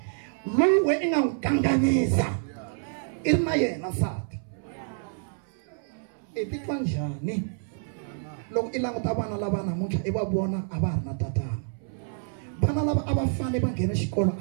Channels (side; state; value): left; silent; 60 dB below the other